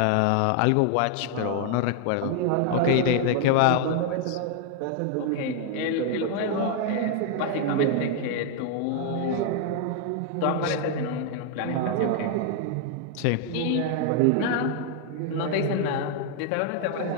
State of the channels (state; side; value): different; both; correlation 0.00